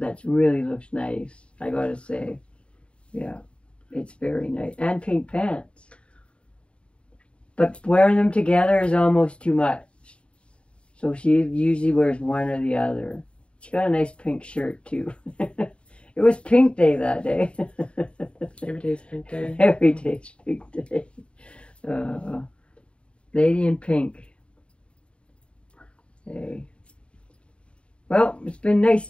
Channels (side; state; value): right; late; 0.057 ms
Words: that really looks nice, I gotta say. Yeah, it's very nice. And pink pants. But wearing them together is almost too much. So she usually wears one or the other. She got a nice pink shirt too. It was pink day that day. Every day's pink day. Every day's pink day. Lady in pink. Hey. Well, it's been nice